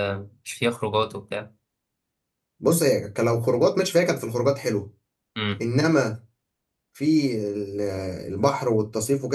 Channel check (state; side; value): identical; both; correlation 1.00